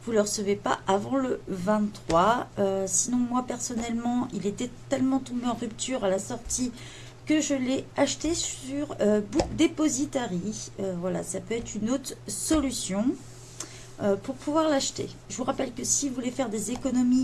vous ne le recevez pas avant le 23. Sinon, moi personnellement, il était tellement tombé en rupture à la sortie que je l'ai acheté sur Book Depository. Voilà, ça peut être une autre solution pour pouvoir l'acheter. Je vous rappelle que si vous voulez faire des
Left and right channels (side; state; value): both; identical; correlation 1.00